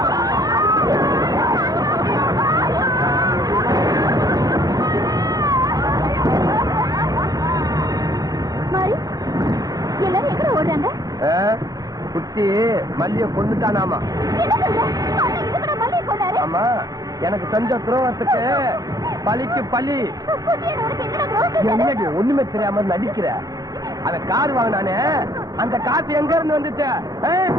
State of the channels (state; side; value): late; left; 0.18 ms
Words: மாறி, எல்லாரும் எங்க ஓடுறாங்க? குட்டி மல்லிய கொண்டுட்டானாமா. ஆமா, எனக்கு செஞ்ச துரோகத்துக்கு பலிக்கு பலி. என்னடி ஒண்ணுமே தெரியாம நடிக்கிற? அந்த கார் வாங்கினானே, அந்த காசு எங்க இருந்து வந்துச்சு?